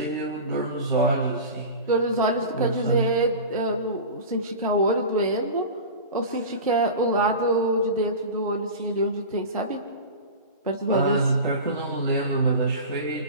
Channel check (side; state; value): both; inverted; correlation -0.31